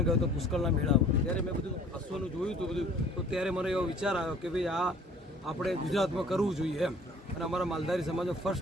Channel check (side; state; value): both; normal; correlation 0.52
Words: ગયો હતો પુષ્કળના મેળામાં, ત્યારે મેં બધું અશ્વનું જોયું હતું બધું, તો ત્યારે મને એવો વિચાર આવ્યો કે ભાઈ આ આપણે ગુજરાતમાં કરવું જોઈએ એમ, અને અમારા માલધારી સમાજનો